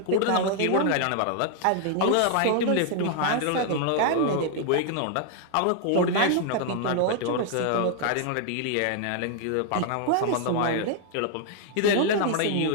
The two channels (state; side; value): different; both; correlation 0.00